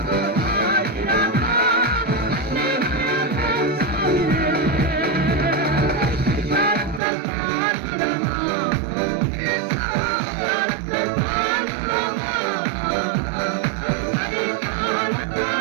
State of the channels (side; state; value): left; drops out; at 7.0 s